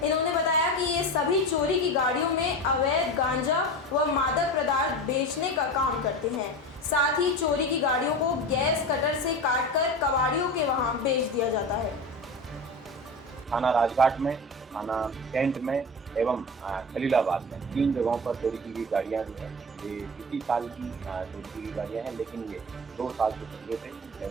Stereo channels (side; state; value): both; normal; correlation 0.28